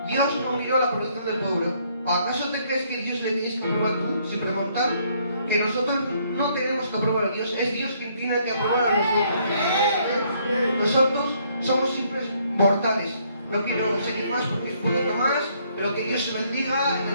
Dios no miró la protección del pueblo. ¿Acaso te crees que Dios le tienes que aprobar tú, sin preguntar? Que nosotros no tenemos que aprobar a Dios, es Dios quien tiene que aprobar a nosotros. Nosotros somos simples mortales. No quiero seguir más porque es un poquito más, pero que Dios se bendiga en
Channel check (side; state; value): both; inverted; correlation -0.68